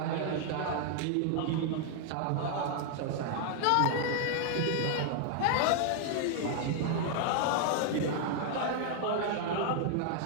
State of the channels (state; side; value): different; both; correlation 0.00